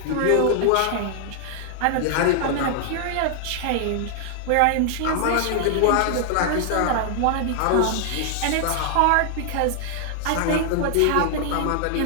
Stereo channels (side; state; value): both; different; correlation 0.00